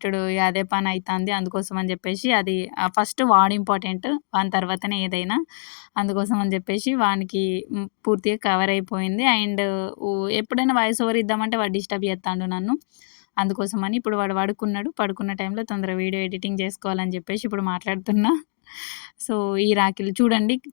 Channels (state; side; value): silent; right; digital silence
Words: ఇగ అదే పనయితాంది. అందుకోసం అని జెప్పేసి అది ఫస్ట్ వాడు ఇంపార్టెంట్. వాని తర్వాతనే ఏదైనా. అందుకోసం అని జెప్పేసి వానికి పూర్తిగా కవర్ అయిపోయింది. అండ్ ఎప్పుడైనా వాయిస్ ఓవర్ ఇద్దామంటే వాడు డిస్టర్బ్ జేత్తాండు నన్ను. అందుకోసమని ఇప్పుడు వాడు పడుకున్నాడు. పడుకున్న టైంలో తొందరగా వీడియో ఎడిటింగ్ జేసుకోవాలని జెప్పేసి ఇప్పుడు మాట్లాడుతున్నా. సో, ఈ రాఖీలు చూడండి